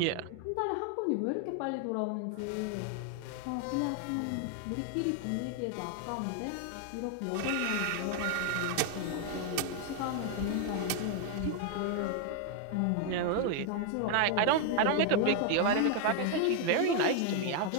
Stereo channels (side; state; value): both; different; correlation 0.00